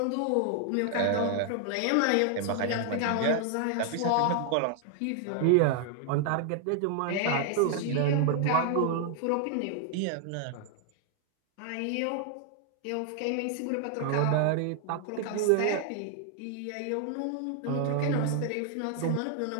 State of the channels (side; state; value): both; different; correlation 0.00